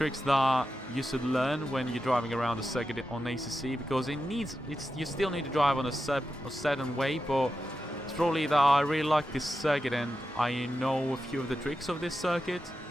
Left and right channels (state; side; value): normal; both; correlation 0.90